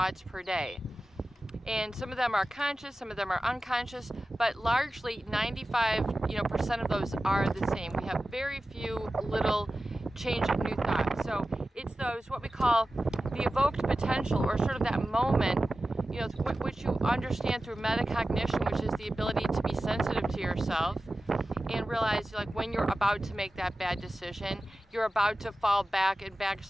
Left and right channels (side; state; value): both; normal; correlation 0.94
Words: per day. And some of them are conscious, some of them are unconscious, but largely 95% of those are the same. We have very few little change of new thoughts. So it's those, what we call the evoked potential, or sort of that moment, which you understand through metacognition, which is the ability to be sensitive to yourself and realize, like, when you're about to make that bad decision, you're about to fall back and